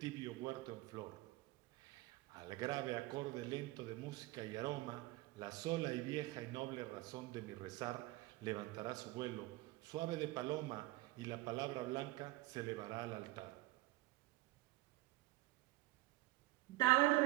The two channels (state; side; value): quieter; left; 18.9 dB